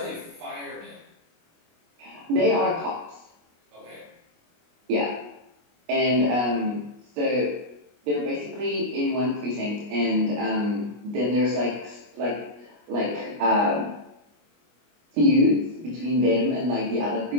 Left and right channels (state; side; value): late; left; 25 ms